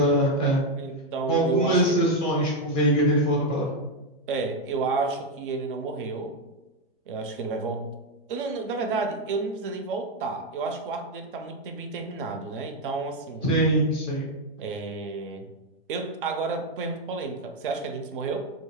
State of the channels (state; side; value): normal; both; correlation 0.04